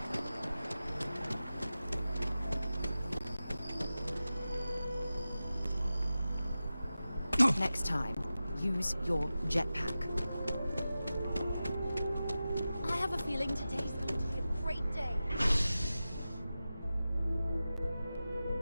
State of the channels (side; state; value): both; inverted; correlation -0.94